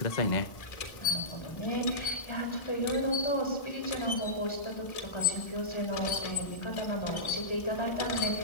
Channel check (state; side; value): late; right; 1.7 ms